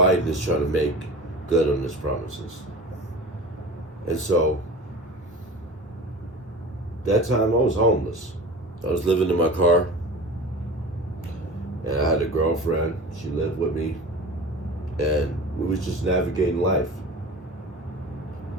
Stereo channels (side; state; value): both; normal; correlation 0.36